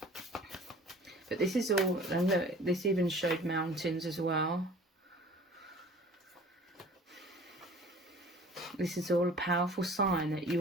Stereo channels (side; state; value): both; normal; correlation 0.47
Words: But this is all, and look, this even showed mountains as well. This is all a powerful sign that